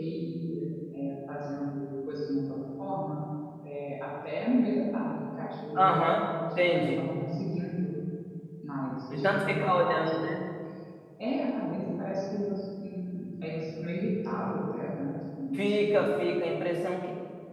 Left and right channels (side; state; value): both; identical; correlation 1.00